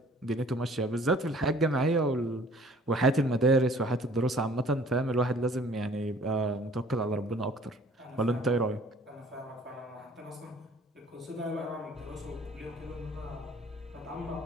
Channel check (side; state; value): both; normal; correlation 0.54